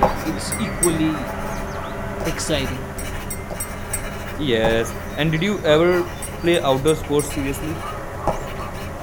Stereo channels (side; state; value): both; identical; correlation 1.00